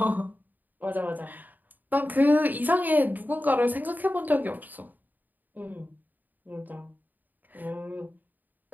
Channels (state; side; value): late; left; 0.086 ms